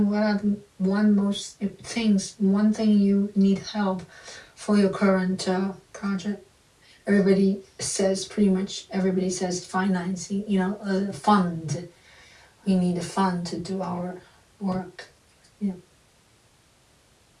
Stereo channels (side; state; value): both; identical; correlation 1.00